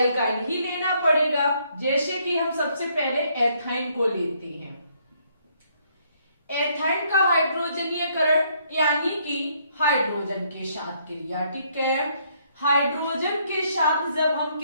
ही लेना पड़ेगा। जैसे कि हम सबसे पहले एथाइन को लेते हैं। एथाइन का हाइड्रोजनीयकरण यानी कि हाइड्रोजन के साथ क्रिया, ठीक है। हाइड्रोजन के साथ जब हम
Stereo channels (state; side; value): inverted; both; correlation -0.69